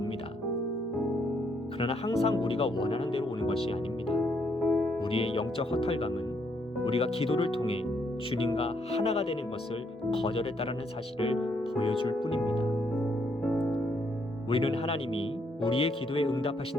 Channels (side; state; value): both; normal; correlation 0.73